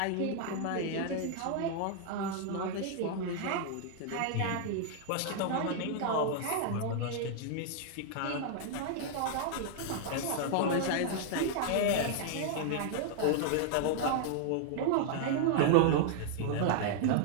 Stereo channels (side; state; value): both; different; correlation 0.00